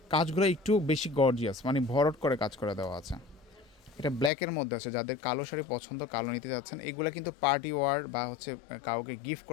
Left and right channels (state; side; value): drops out; right; at 4.3 s